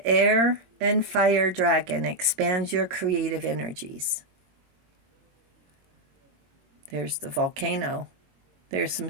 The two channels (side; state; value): left; late; 22 ms